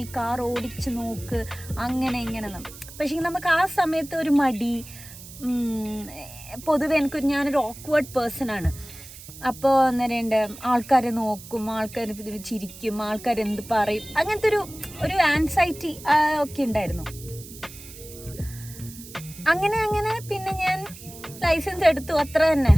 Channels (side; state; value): right; noise; hiss, 16 dB below the sound